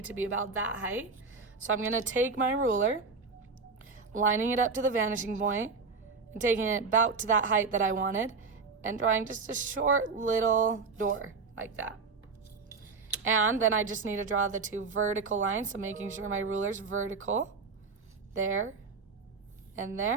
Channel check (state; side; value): quieter; left; 4.6 dB